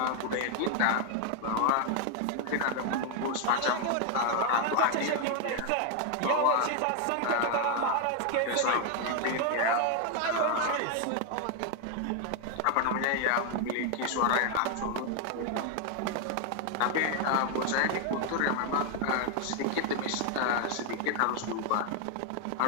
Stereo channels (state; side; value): different; both; correlation 0.00